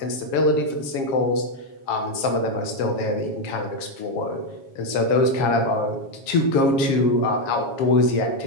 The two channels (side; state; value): right; late; 7.3 ms